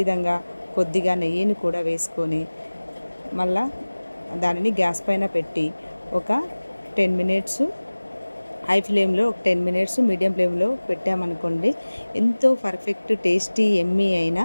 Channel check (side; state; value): both; inverted; correlation -1.00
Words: కొద్దిగా నెయ్యిని కూడా వేసుకొని మళ్ళా దానిని గ్యాస్ పైన పెట్టి ఒక 10 మినిట్స్ హై ఫ్లేమ్లో, ఒక 10 మినిట్స్ మీడియం ఫ్లేమ్లో పెట్టామనుకోండి, ఎంతో పర్ఫెక్ట్ టేస్టీ ఎమ్మీ అయిన